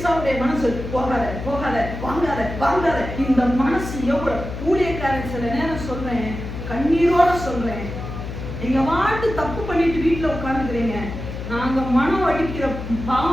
மனசு போகாத போகாத வாங்காத வாங்காத. இந்த மனசு எவ்வளவு ஊழியக்காரன் சில நேரம் சொல்றேன், கண்ணீரோட சொல்றேன், நீங்க வாட்டு தப்பு பண்ணிட்டு வீட்டுல உட்கார்ந்துக்கிறீங்க, நாங்க மனம் அடிக்கிற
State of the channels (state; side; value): noise; left; hum, 7 dB below the sound